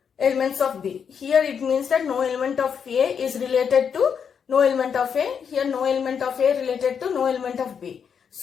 elements of B. Here it means that no element of A is related to no element of A. Here no element of A related to no element of B.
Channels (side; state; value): right; quieter; 7.1 dB